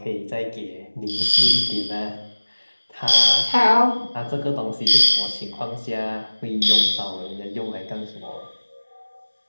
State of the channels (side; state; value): both; inverted; correlation -1.00